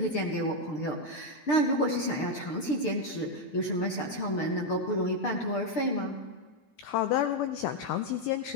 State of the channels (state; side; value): late; right; 6.6 ms